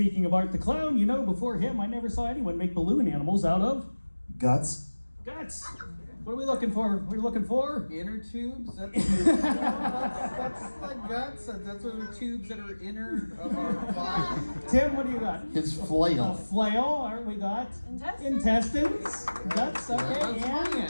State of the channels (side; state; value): both; inverted; correlation -1.00